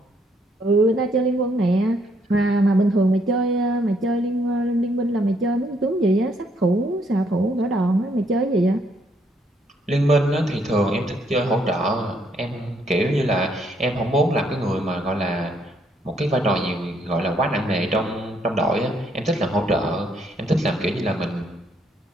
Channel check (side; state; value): both; normal; correlation 0.71